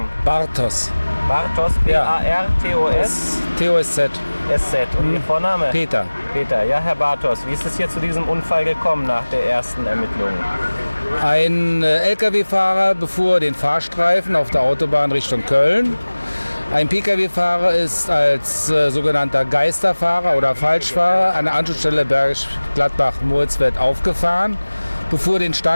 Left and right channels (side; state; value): both; inverted; correlation -1.00